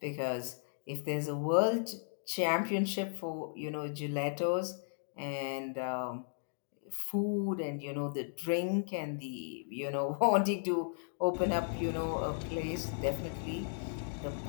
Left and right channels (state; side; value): silent; right; digital silence